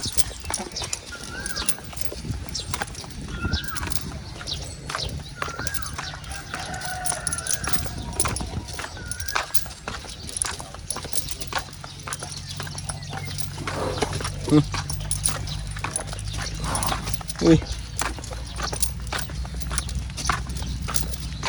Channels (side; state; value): both; identical; correlation 1.00